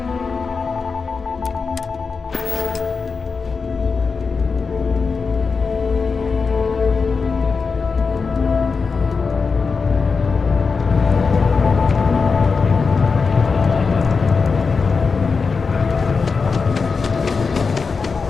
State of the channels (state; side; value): quieter; right; 4.9 dB